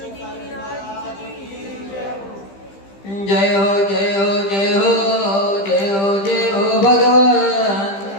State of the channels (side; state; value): right; late; 15 ms